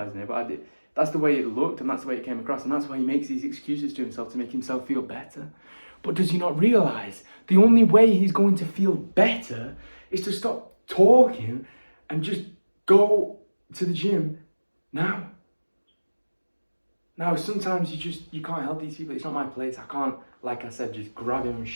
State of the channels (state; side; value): inverted; both; correlation -1.00